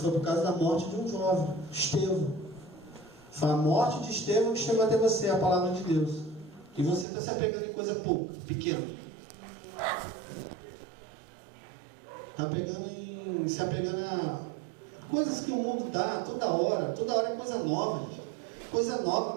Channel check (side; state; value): left; drops out; at 7.1 s